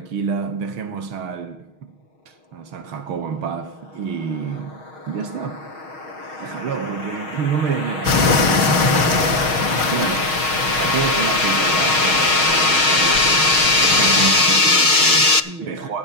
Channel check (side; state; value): left; late; 6.4 ms